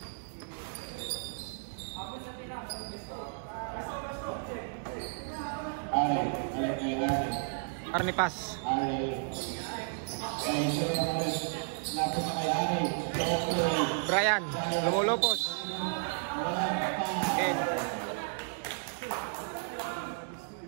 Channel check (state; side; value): silent; left; digital silence